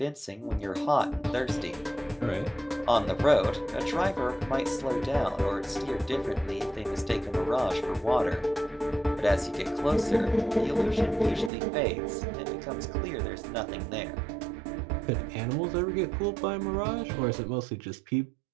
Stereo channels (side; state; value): left; drops out; at 11.5 s